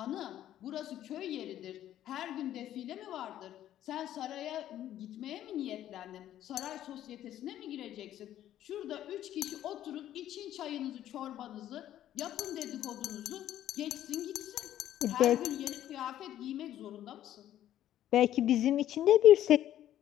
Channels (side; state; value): right; quieter; 12.1 dB